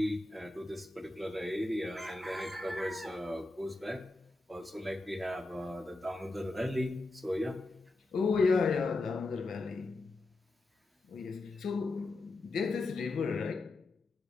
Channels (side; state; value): right; quieter; 3.0 dB